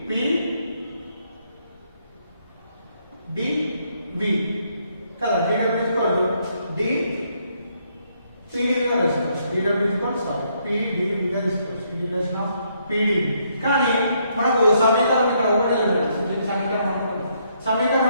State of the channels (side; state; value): both; inverted; correlation -0.73